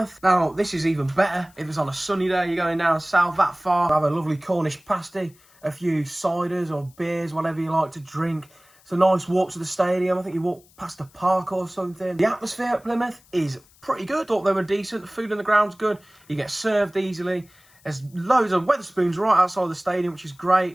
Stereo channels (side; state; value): left; noise; hiss, 29 dB below the sound